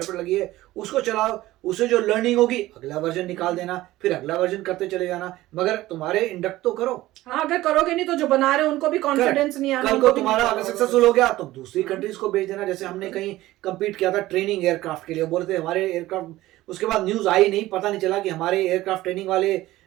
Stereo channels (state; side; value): quieter; left; 16.7 dB